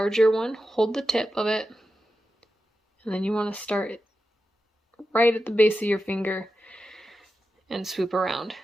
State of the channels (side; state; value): both; normal; correlation 0.90